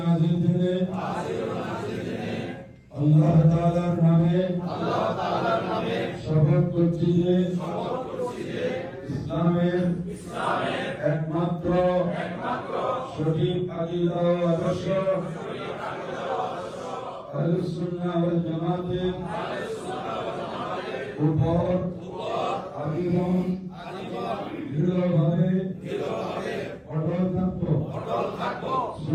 दिने अल्लाह ताआलार नामे शपथ করছি যে ইসলামের একমাত্র সঠিক আকীদা ও আদর্শ আহলুস সুন্নাহ ওয়াল জামাতের উপর আজীবন দৃঢ়ভাবে অটল থাকব।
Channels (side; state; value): both; identical; correlation 1.00